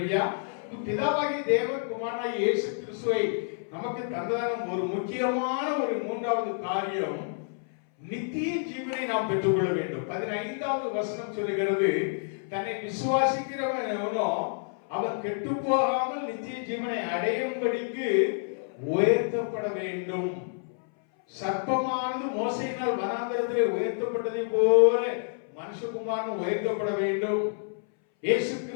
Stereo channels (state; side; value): silent; right; 59 dB below the other